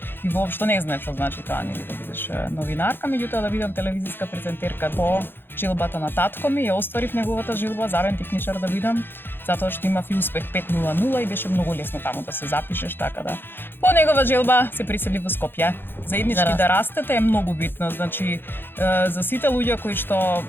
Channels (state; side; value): late; right; 0.10 ms